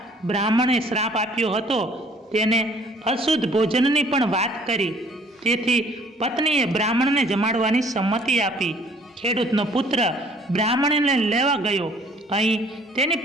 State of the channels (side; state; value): both; normal; correlation 0.57